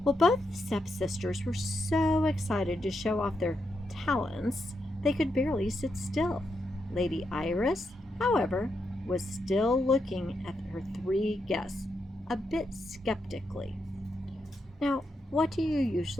Well, both stepsisters were so excited to show off their talents, they could barely sit still. Lady Iris, however, was still looking at her three guests, a bit skeptically. Now, what do you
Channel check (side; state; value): both; normal; correlation 0.83